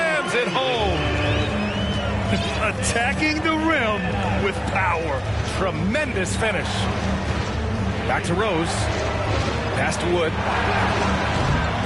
it home. Attacking the rim with power. Tremendous finish. Back to Rose. Pass to Wood.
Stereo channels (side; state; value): both; identical; correlation 1.00